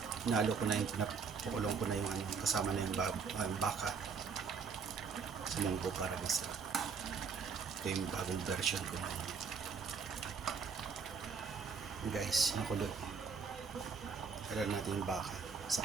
Nalo ko na yung napakulong ko na yung kasama na yung baka sa munggo para masarap. Ito yung bagong version ko na yun. Guys, nakulo. Kailan natin yung baka sa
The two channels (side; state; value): left; quieter; 5.6 dB